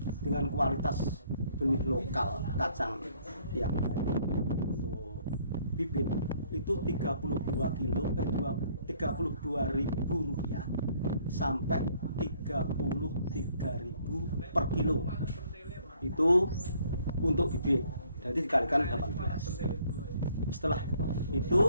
dengan kualitas benih lokal kacang yang baik untuk bibit itu 32.000 rupiah sampai 33.000 per kilo. Itu untuk bibit, jadi dikalikan 18. Setelah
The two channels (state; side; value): inverted; both; correlation -0.63